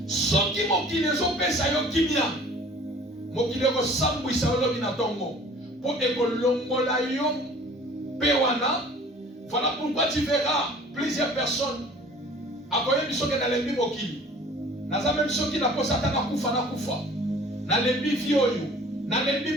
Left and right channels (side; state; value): both; normal; correlation 0.49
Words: Ce qui mokile zopesa yo kimia. Mokile ko sambwisa olobi na tongo. Pour ekolongola yo pewana. Voilà pourquoi tu verras plusieurs personnes akoye biso ke na lembi mokili. Naza même ceux qui na posa tana kufa na kufa. Na lembi vi oyo, na